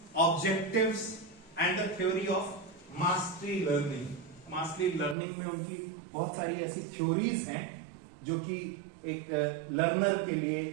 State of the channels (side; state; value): left; drops out; at 5.2 s